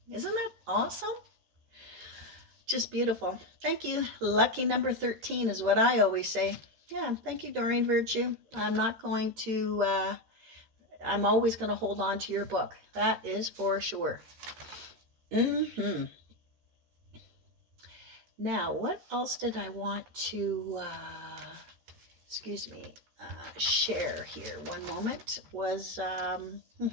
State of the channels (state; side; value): late; left; 13 ms